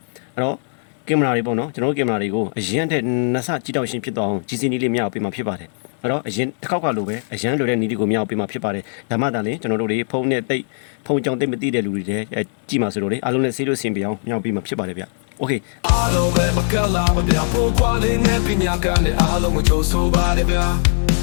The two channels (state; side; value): silent; right; digital silence